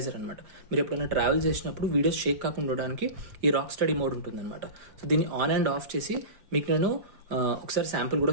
అనమాట. మీరు ఎప్పుడైనా ట్రావెల్ చేసినప్పుడు వీడియోస్ షేక్ కాకుండా ఉండడానికి ఈ రాక్ స్టడీ మోడ్ ఉంటుంది అనమాట. సో దీన్ని ఆన్ అండ్ ఆఫ్ చేసి మీకు నేను ఒకసారి శాంపుల్ కూడా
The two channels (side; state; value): left; late; 5.0 ms